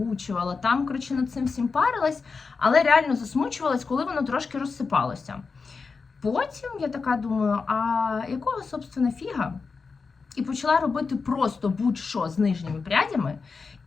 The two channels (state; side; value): quieter; right; 4.8 dB